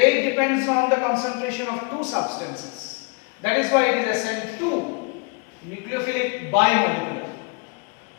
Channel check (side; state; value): right; quieter; 32.7 dB